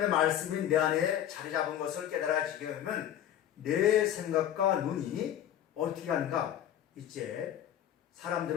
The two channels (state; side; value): quieter; right; 10.9 dB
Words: 말씀이 내 안에 자리 잡은 것을 깨달아지게 되면 내 생각과 눈이 어떻게 하는가? 이제